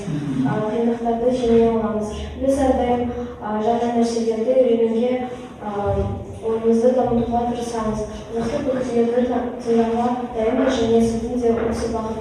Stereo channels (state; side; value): identical; both; correlation 1.00